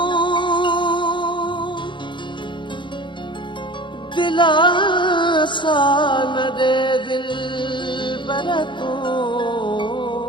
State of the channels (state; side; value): late; right; 0.23 ms